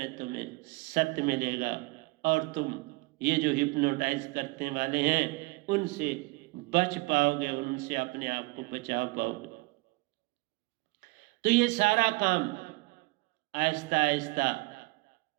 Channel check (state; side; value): quieter; left; 24.1 dB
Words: तुम्हें सत्य मिलेगा, और तुम ये जो हिप्नोटाइज करने वाले हैं उनसे बच पाओगे, उनसे अपने आप को बचा पाओगे। तो ये सारा काम आहिस्ता आहिस्ता